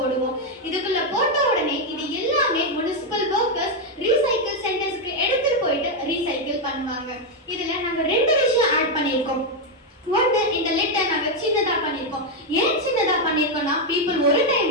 இதுக்குள்ள போட்ட உடனே இது எல்லாமே முனிசிபல் வர்க்கர்ஸ் ரீசைக்கிள் சென்டர்ஸ்க்கு எடுத்துட்டு போயிட்டு ரீசைக்கிள் பண்ணுவாங்க. இதுல நாங்க ரெண்டு விஷயம் ஆட் பண்ணியிருக்கோம். ஒன்று, இந்த லிட்டை நாங்கள் சின்னதாக பண்ணியிருக்கோம். ஏன் சின்னதாக பண்ணியிருக்கோம்னா, பீப்புள் ஒரு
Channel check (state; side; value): normal; both; correlation 0.03